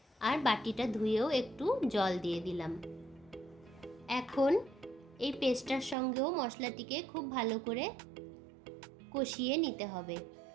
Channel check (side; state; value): left; drops out; at 6.0 s